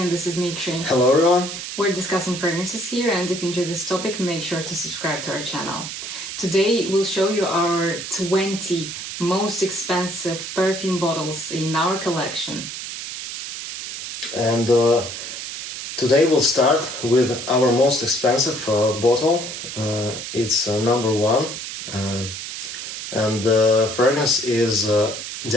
this is Dmitry. Hello everyone. We're discussing fragrances here, and if you enjoy this topic, make sure to subscribe to our channel. Today we'll show you our 20 most expensive perfume bottles in our collection. And today we'll start with our most expensive bottle. It's number one. And the fragrance is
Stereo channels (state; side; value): noise; right; hiss, 8 dB below the sound